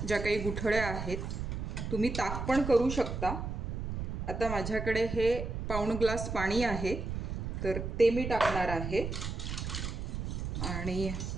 ज्या काही गुठळ्या आहेत, तुम्ही ताक पण करू शकता। आता माझ्याकडे हे पाऊण ग्लास पाणी आहे, तर ते मी टाकणार आहे आणि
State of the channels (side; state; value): right; noise; rumble, 4 dB below the sound